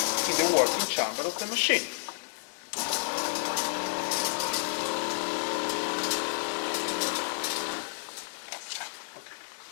in the working chamber of the machine.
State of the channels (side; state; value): right; silent; digital silence